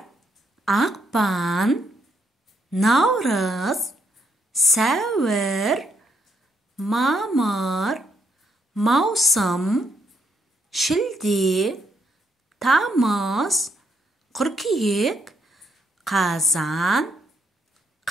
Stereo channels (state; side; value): normal; both; correlation 0.75